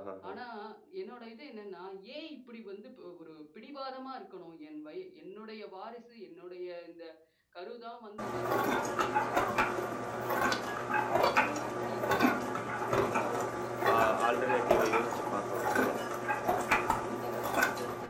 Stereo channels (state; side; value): identical; both; correlation 1.00